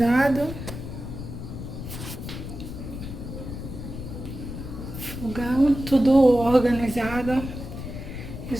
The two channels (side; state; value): left; noise; rumble, 8 dB below the sound